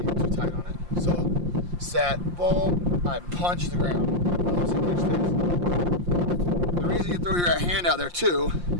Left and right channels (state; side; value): late; left; 5.7 ms